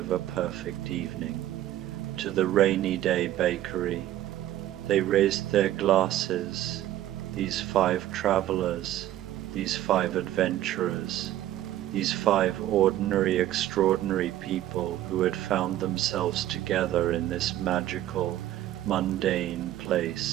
a perfect evening. To the Rainy Day Bakery. They raised their glasses, these 5 travelers, these 5 adventurers, these 5 ordinary, extraordinary people who had found themselves together in this magical, mundane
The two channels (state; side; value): quieter; left; 13.2 dB